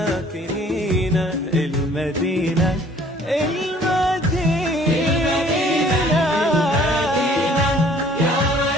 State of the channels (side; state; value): both; normal; correlation 0.55